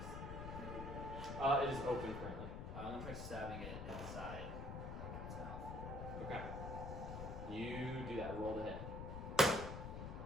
It is open currently. I'm gonna try stabbing it inside its mouth. Okay. You do that. Roll the hit.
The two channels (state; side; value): noise; left; rumble, 6 dB below the sound